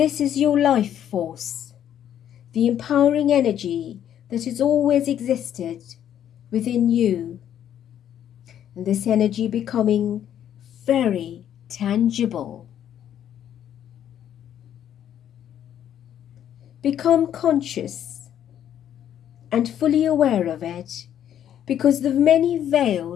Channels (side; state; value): right; quieter; 10.2 dB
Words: is your life force, the empowering energy that has always existed within you. And this energy becoming very tangible. Become conscious and fully aware of it, because the many